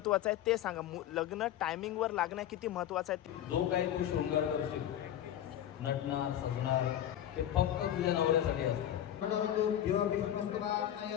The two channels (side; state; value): right; quieter; 11.3 dB